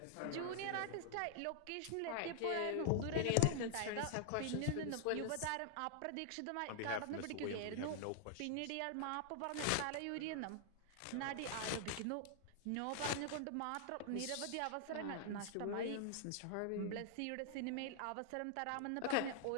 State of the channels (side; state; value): both; different; correlation 0.00